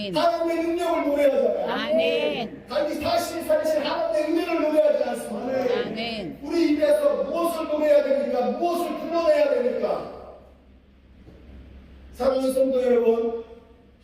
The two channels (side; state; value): both; identical; correlation 1.00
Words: 하나님의 능력을 노래하잖아요. 아멘. 다시 살리신 하나님의 은혜를 노래하지 않습니까? 아멘. 우리 입에서 무엇을 노래해야 됩니까? 무엇을 불러내야 됩니까? 사랑하는 성도 여러분,